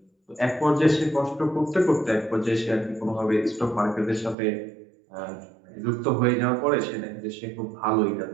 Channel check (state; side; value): drops out; left; at 4.4 s